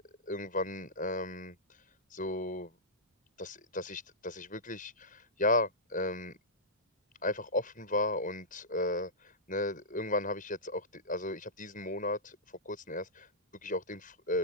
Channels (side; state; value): both; normal; correlation -0.14